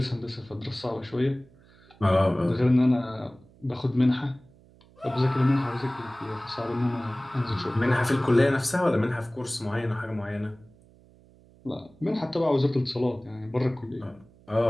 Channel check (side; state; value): right; noise; hum, 27 dB below the sound